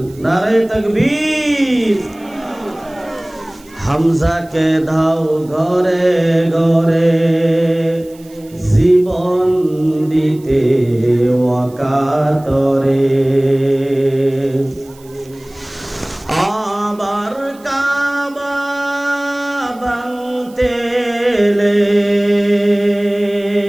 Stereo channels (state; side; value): noise; right; hiss, 26 dB below the sound